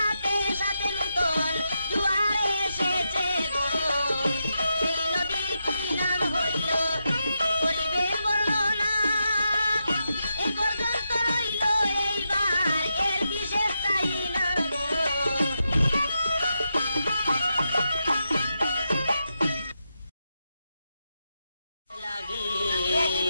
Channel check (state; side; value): inverted; both; correlation -0.85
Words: সাথে নূতন জোয়ার এসেছে গো। সেই নদীর কি নাম হইল করিবেন বর্ণনা, এ পর্যন্ত রইল এইবার এর বিশেষ চাই না গো।